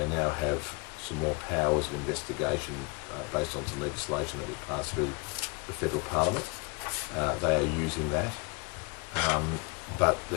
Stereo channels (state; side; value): quieter; right; 30.4 dB